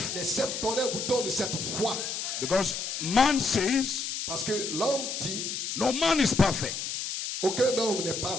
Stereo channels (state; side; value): noise; left; hiss, 4 dB below the sound